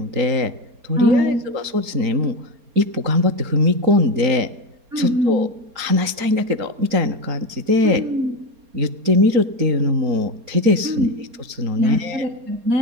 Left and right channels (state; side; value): late; left; 4.3 ms